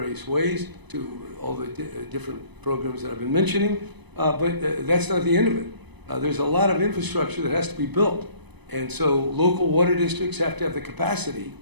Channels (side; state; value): left; late; 1.0 ms